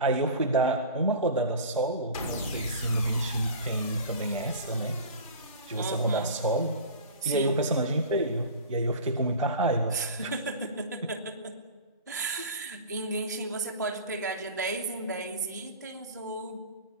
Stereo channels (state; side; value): inverted; both; correlation -0.36